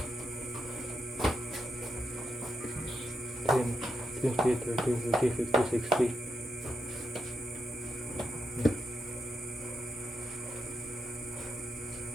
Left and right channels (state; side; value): normal; both; correlation 0.84